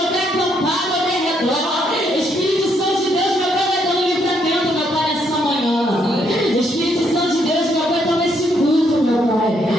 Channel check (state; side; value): normal; both; correlation 0.73